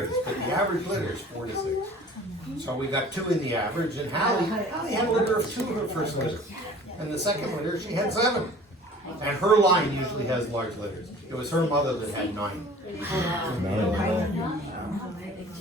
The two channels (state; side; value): normal; both; correlation 0.46